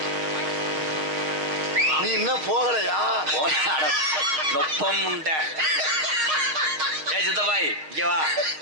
நீ இன்னும் போகலையா? நொப்பம் உண்ட. ஏ சித்தப்பாய், இங்க வா,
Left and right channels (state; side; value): late; left; 6.4 ms